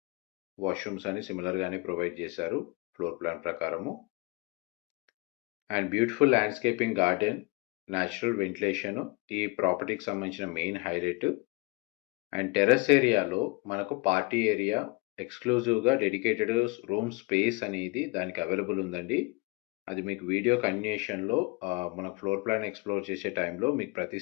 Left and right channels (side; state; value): right; quieter; 26.5 dB